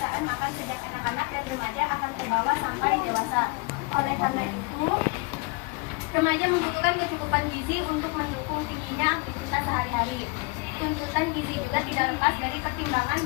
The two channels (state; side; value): quieter; right; 27.1 dB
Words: makan sejak anak-anak dan remaja akan terbawa sampai dewasa. Oleh karena itu, remaja membutuhkan kecukupan gizi untuk mendukung tingginya aktivitas sehari-hari. Tuntutan gizi juga tidak lepas dari pertimbangan